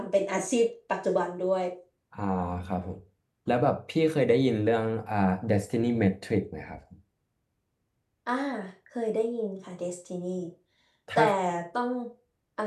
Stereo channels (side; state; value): both; identical; correlation 1.00